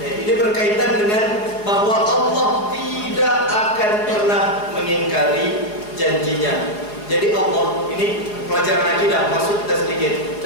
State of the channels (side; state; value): right; late; 4.8 ms